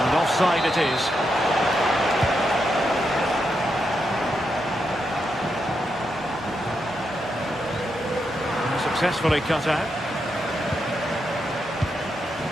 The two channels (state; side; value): normal; both; correlation 0.83